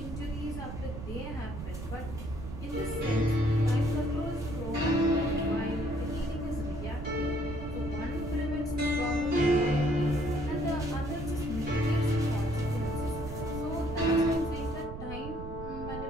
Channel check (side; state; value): right; noise; rumble, 8 dB below the sound